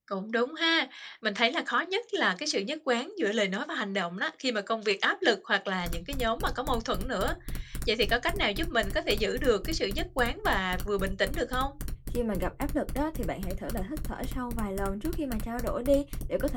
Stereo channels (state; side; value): identical; both; correlation 1.00